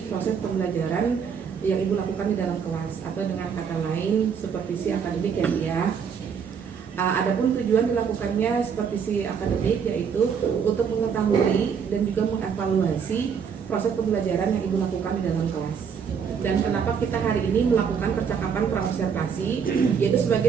proses pembelajaran yang Ibu lakukan di dalam kelas, atau dengan kata lain supervisi akademik ya Bu ya. Adapun tujuan dilakukannya supervisi akademik yaitu untuk mengetahui dan juga mengevaluasi proses pembelajaran yang Ibu lakukan di dalam kelas. Dan kenapa kita hari ini melakukan percakapan pra-observasi, yaitu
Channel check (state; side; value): quieter; left; 6.8 dB